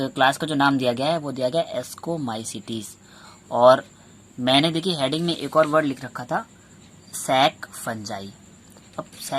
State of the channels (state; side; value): identical; both; correlation 1.00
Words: क्लास का जो नाम दिया गया है वो दिया गया एस्कोमाइसिटीज। और मैंने देखिए हेडिंग में एक और वर्ड लिख रखा था, सैक फंजाई। अब